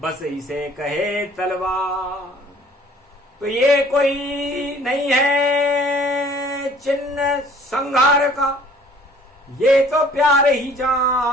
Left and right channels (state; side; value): normal; both; correlation 0.54